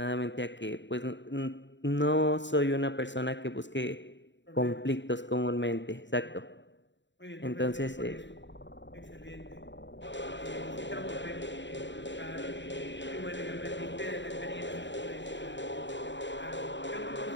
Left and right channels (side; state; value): right; late; 0.53 ms